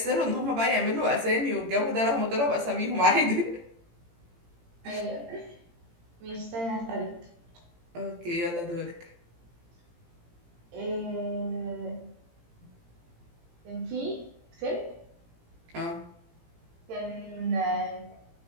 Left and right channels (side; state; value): left; late; 18 ms